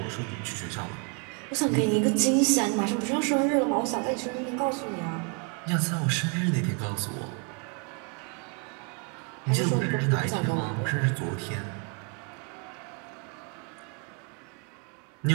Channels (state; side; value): quieter; left; 36.3 dB